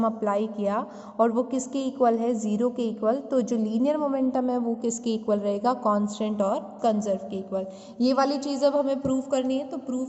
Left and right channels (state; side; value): identical; both; correlation 1.00